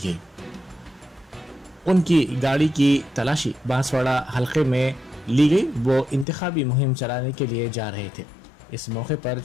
उनकी गाड़ी की तलाशी बांसवाड़ा हलके में ली गई। वो इंतखाबी मुहिम चलाने के लिए जा रहे थे। इस मौके पर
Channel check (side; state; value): right; drops out; at 6.2 s